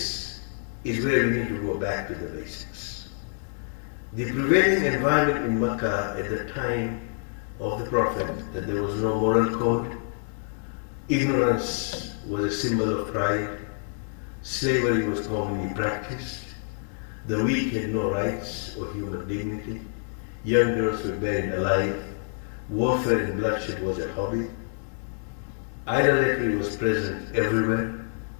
is where we need to go back to the basics. The prevailing environment in Makkah at the time of the Prophet, that there was no moral code, ignorance was a symbol of pride, slavery was commonly practiced, the weak had no rights or human dignity, young girls were buried alive, warfare and bloodshed was a hobby, idolatry was present everywhere.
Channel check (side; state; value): right; silent; 60 dB below the other